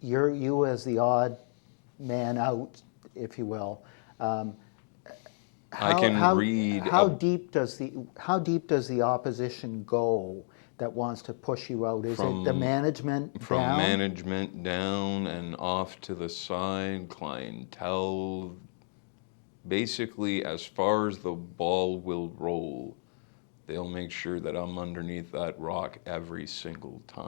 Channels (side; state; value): right; silent; 57 dB below the other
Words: you as the odd man out, if you will? How deep does the opposition go that wants to push you out? Is it the management down? From management down and off to the side, clientele. Basically, as far as the ball will roll, they'll make sure that I'm underneath that rock every single